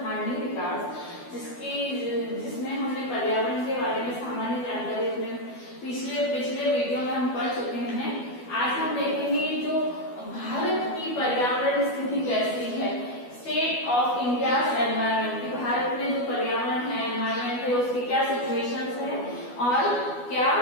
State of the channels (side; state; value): right; late; 12 ms